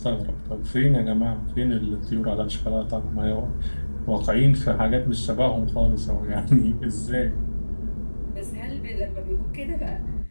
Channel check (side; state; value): both; inverted; correlation -1.00